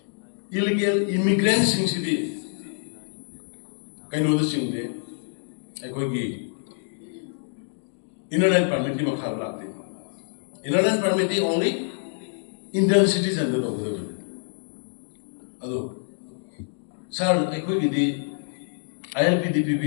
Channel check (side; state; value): right; silent; digital silence